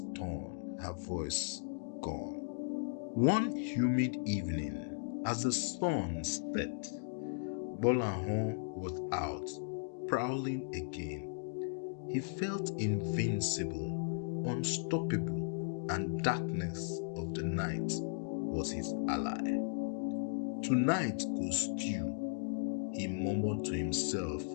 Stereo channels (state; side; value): silent; right; digital silence